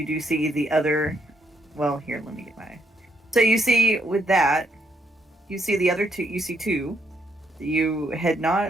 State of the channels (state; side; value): normal; both; correlation 0.74